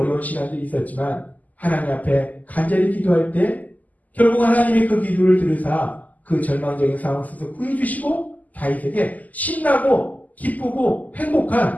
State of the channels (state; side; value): late; right; 0.078 ms